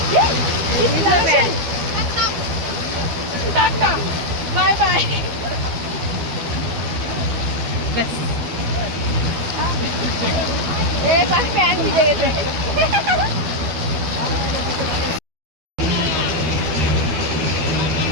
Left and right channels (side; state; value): left; late; 12 ms